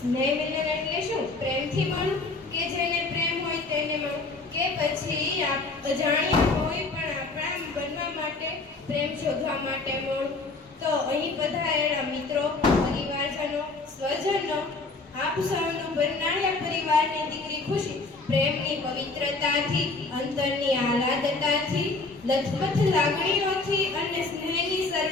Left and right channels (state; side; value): quieter; right; 3.5 dB